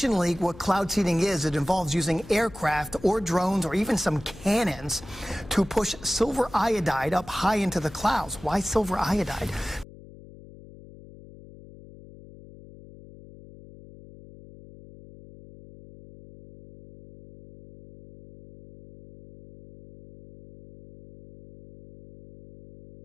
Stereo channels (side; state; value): left; noise; hum, 19 dB below the sound